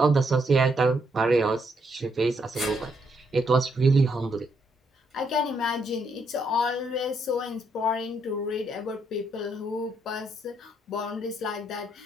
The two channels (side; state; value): both; normal; correlation 0.75